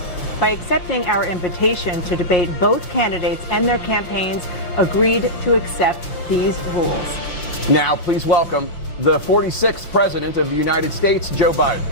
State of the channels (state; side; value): late; right; 5.8 ms